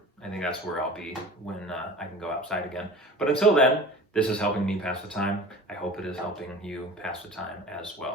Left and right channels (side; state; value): both; normal; correlation 0.40